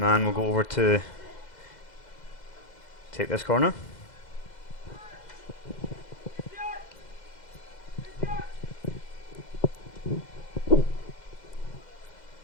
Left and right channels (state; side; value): late; right; 2.0 ms